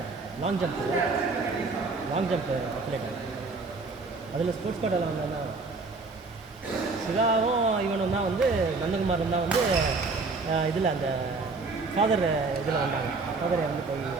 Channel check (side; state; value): left; quieter; 3.9 dB